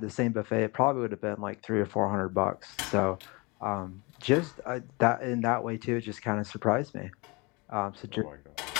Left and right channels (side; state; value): right; quieter; 27.1 dB